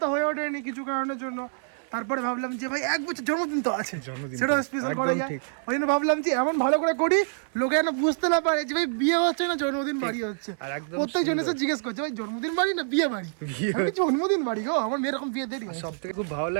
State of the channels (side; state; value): left; silent; 57 dB below the other